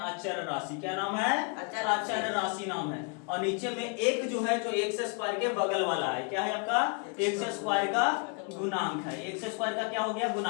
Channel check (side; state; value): right; quieter; 36.3 dB